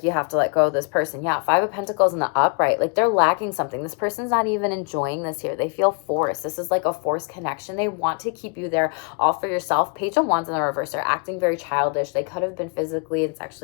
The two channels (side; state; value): right; quieter; 35.5 dB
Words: you have to let go of this person. Yeah, Five of Pentacles in the upright. Like, they're lacking something. This person's not even enjoying this here. They feel forced. This is like a forced connection. They want to keep you there all for yourself. Page of Wands in the reverse. They're acting very childish. They could have been physically and